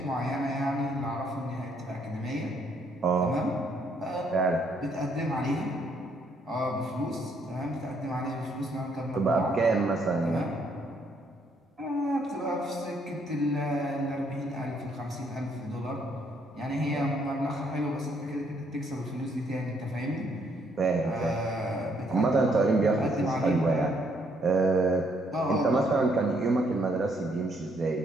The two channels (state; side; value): normal; both; correlation 0.70